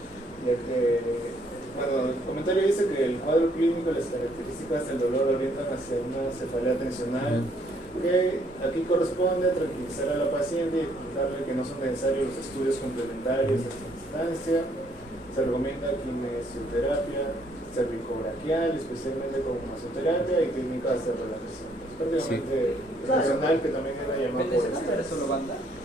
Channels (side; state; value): both; normal; correlation 0.67